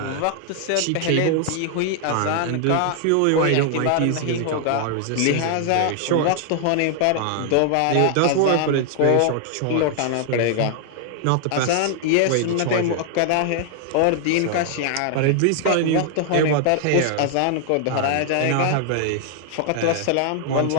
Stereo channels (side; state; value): both; different; correlation 0.00